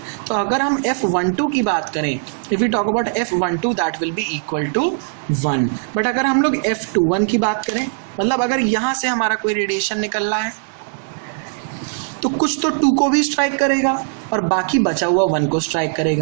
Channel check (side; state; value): left; silent; digital silence